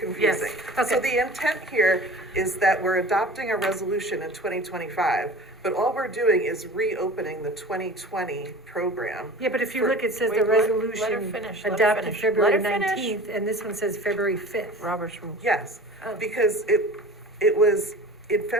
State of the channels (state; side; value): normal; both; correlation 0.40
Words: Yes, So okay. the intent here is that we're adopting a resolution in 2025, but all we're doing is reopening the 2020 program. Yeah, but if you for- look, it says Wait, the let her resolution finish, let her adopted finish. February Let her finish. 19th, and this one says February 5th. Robert's rules. Yes, Oh. because it was in